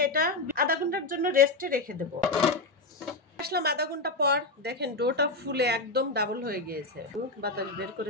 এটা আধা ঘন্টার জন্য রেস্টে রেখে দেব। আসলাম আধা ঘন্টা পর, দেখেন ডোটা ফুলে একদম ডাবল হয়ে গিয়েছে। বাতাস বের করে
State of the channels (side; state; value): right; quieter; 3.1 dB